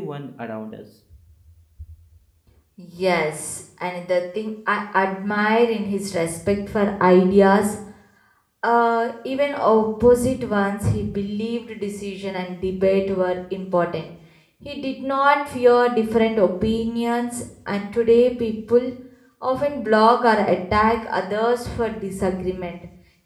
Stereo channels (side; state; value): both; identical; correlation 1.00